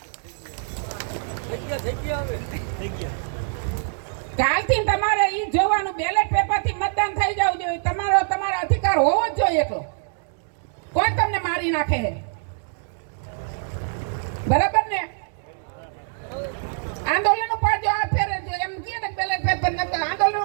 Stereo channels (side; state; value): left; silent; digital silence